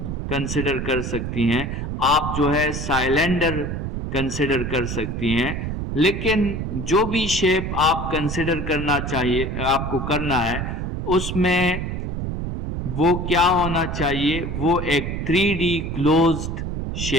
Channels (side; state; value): right; noise; rumble, 4 dB below the sound